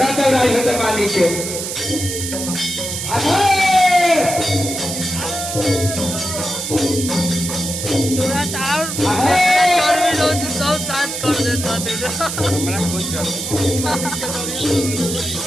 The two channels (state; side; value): noise; right; hiss, 5 dB below the sound